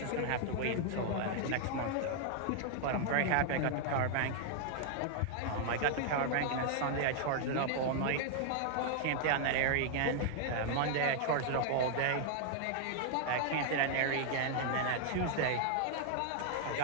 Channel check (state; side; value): different; both; correlation 0.00